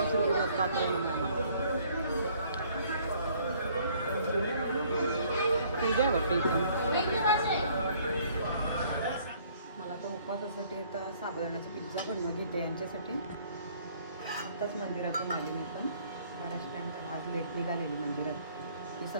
पूजा आहे वाटते इथं. मला तर उपवासासाठी तर साबुदाण्याचा पिझ्झा बनवून घेते यांच्यासाठी. आत्ताच मंदिरातून आले मी पण. बराच टाईम आज लेट निघालेली मंदिरात. मी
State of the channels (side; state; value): both; inverted; correlation -0.60